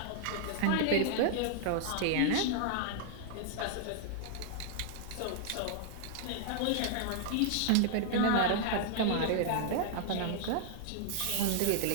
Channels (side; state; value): both; different; correlation -0.01